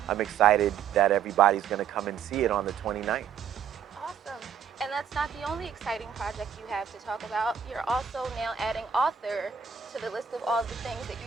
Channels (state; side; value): quieter; left; 7.8 dB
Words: I'm excited that everybody's going to come and see it on the 29th. Awesome. And that's not the only exciting project you have to talk about. You're also now adding author to the list of all the things that you